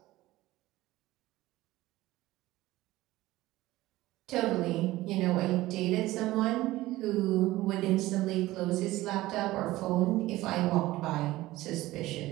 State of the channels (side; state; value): left; quieter; 17.4 dB